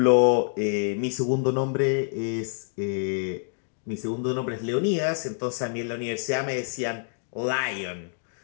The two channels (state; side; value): silent; right; digital silence